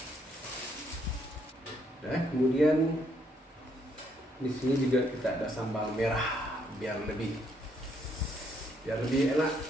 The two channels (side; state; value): both; normal; correlation 0.72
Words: Nah, kemudian di sini juga kita ada sambal merah biar lebih enak.